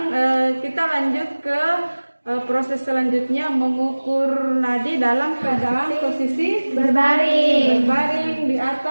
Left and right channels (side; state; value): both; inverted; correlation -1.00